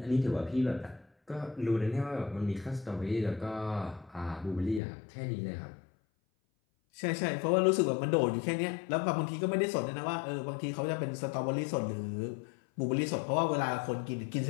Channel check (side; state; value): right; drops out; at 4.8 s